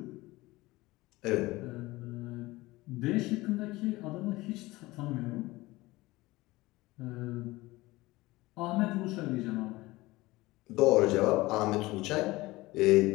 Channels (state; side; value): quieter; right; 20.0 dB